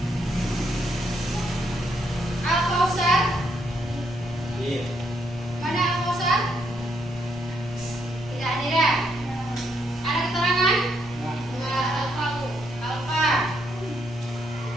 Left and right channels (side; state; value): both; normal; correlation 0.75